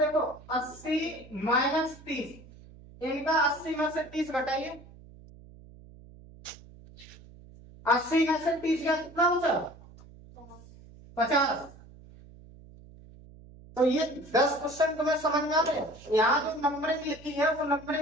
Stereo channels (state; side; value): noise; right; hum, 21 dB below the sound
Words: 80 माइनस 30, इनका 80 में से 30 घटाइए, 80 में से 30 का कितना बचा, 50। तो ये 10 क्वेश्चन तुम्हें समझ में आ रहे। यहाँ जो नंबरिंग लिखी है वो